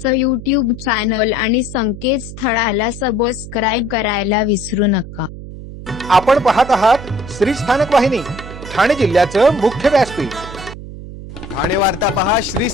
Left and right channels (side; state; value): right; noise; hum, 12 dB below the sound